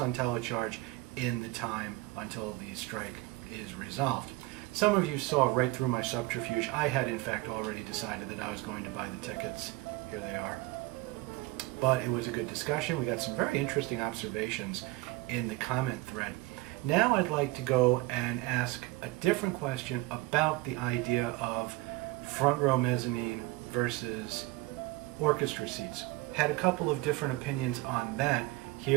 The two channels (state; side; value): quieter; left; 20.0 dB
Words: telecharge in the time until the strike is resolved. Some of you saw right through my subterfuge. I had in fact already decided that I was going to buy the tickets. Here they are. But it was a good discussion. We got some very interesting observations in the comment thread. Now I'd like to go and ask a different question about the idea of front row mezzanine versus orchestra seats. Had a couple of different opinions on that.